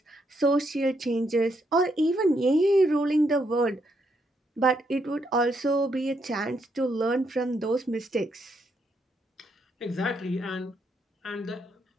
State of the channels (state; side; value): normal; both; correlation 0.77